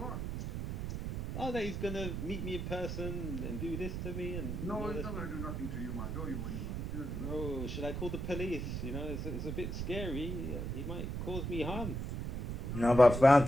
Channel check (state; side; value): noise; right; rumble, 4 dB below the sound